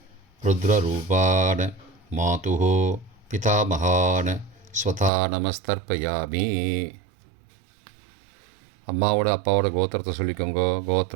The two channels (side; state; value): left; drops out; at 5.1 s